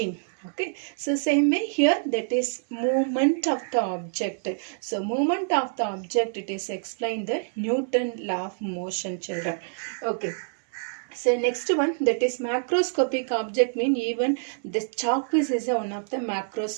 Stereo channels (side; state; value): left; silent; digital silence